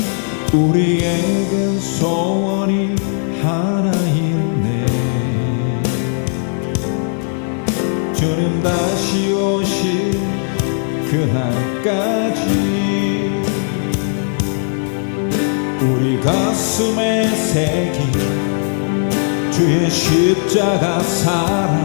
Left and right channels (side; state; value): right; silent; digital silence